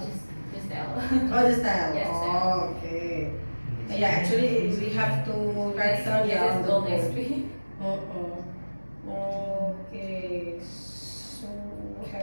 tell. Oh, the style. Yes, Oh, okay. Yeah, actually, we have to write down Yes, it's gold the XP. Okay. So,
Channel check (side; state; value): both; inverted; correlation -1.00